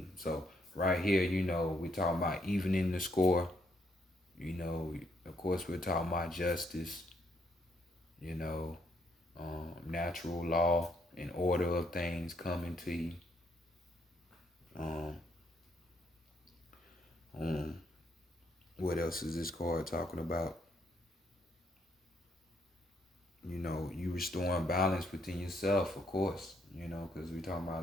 So right here, we're talking about evening the score. Of course, we're talking about justice, natural law and order of things coming to you. What else is this card talking about? You restoring balance within yourself, of course, because we're talking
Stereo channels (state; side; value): normal; both; correlation 0.73